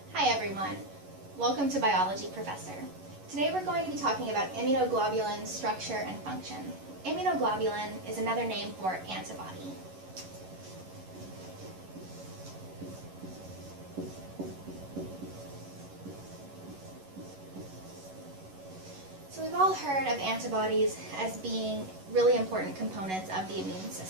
Hi everyone, welcome to Biology Professor. Today we're going to be talking about immunoglobulin structure and function. Immunoglobulin is another name for antibody. So we've all heard of antibodies as being really important components of the immune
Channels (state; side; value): late; left; 11 ms